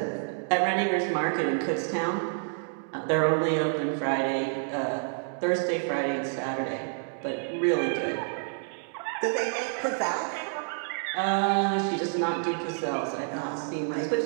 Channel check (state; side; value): silent; left; 59 dB below the other